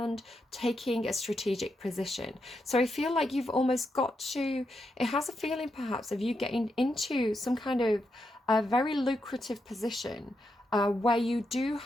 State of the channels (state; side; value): normal; both; correlation 0.84